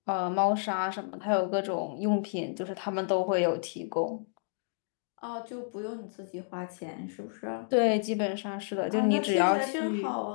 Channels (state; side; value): silent; right; digital silence